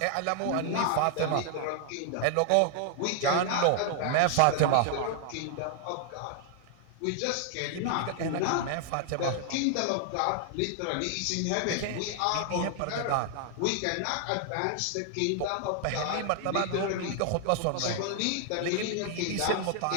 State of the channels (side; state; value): both; different; correlation 0.00